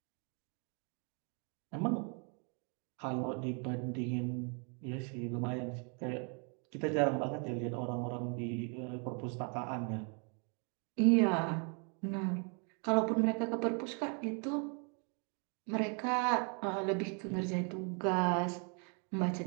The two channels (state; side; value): quieter; left; 38.0 dB